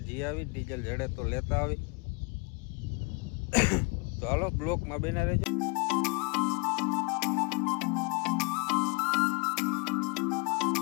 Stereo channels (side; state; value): right; quieter; 29.8 dB